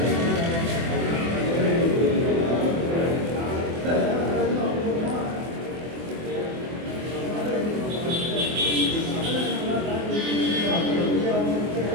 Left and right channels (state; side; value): late; left; 24 ms